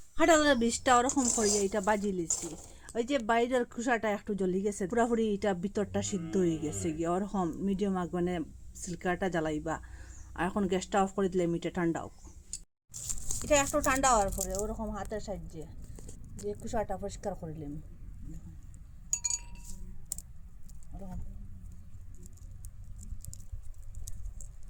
কাঁঠালের বীজটা ওরকম করিয়ে এটা বাজি লিছি। ওই যে বাইরের খোসাটা একটু জ্বলি গেছে, পুরাপুরি এটা ভিতরটা সিদ্ধ হয়ে গেছে গিয়ে ওরকম মিডিয়াম আগুনে সিল্কাটা জ্বালাইবা। আর এখন গ্যাসটা অফ করে দিলে মিটে ঠান্ডা হোক। এটা একটু ঠান্ডা হওয়ার পরে ওরকম হাতের সাহায্যে যে খোসাটা পরিষ্কার করিলাম, ওরকম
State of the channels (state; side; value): identical; both; correlation 1.00